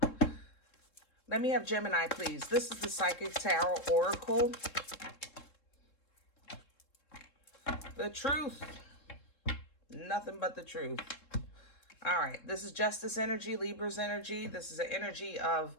Let me have Gemini, please. This is the Psychic Tarot Oracle. The truth. Nothing but the truth. All right. This is Justice energy, Libra's energy. This is an energy of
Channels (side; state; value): right; late; 3.7 ms